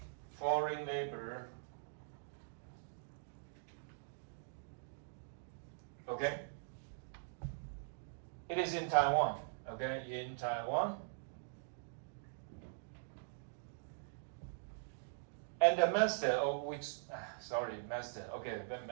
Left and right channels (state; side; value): silent; left; digital silence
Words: foreign labor, okay? It is in Taiwan, okay? In Taiwan. And the master, of which, master, okay,